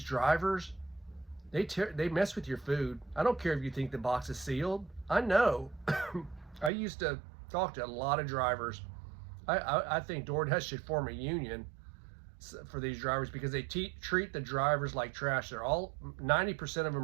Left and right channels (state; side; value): drops out; left; at 6.7 s